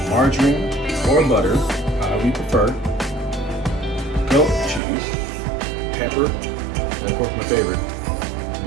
margarine or butter, however you prefer. Goat cheese, pepper, and of course my favorite,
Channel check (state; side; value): drops out; left; at 4.8 s